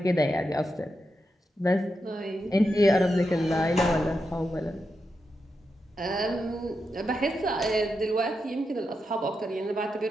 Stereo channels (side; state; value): both; normal; correlation 0.86